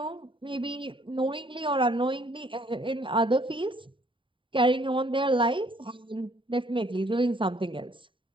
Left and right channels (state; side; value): late; left; 0.25 ms